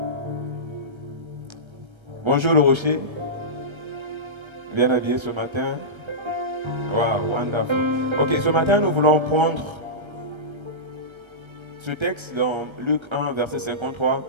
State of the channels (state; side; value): late; left; 1.3 ms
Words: Bonjour le rocher. Bien habillé ce matin. Wow, wonderful. Ok, ce matin nous voulons prendre ce texte dans Luc 1, verset 53.